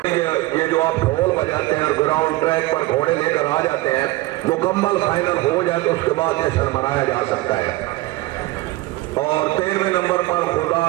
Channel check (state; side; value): quieter; left; 19.2 dB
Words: ये जो आप ढोल बजाते हैं और ग्राउंड ट्रैक पर घोड़े लेकर आ जाते हैं, मुकम्मल फाइनल हो जाए तो उसके बाद जश्न मनाया जा सकता है। और 13वें नंबर पर खुदा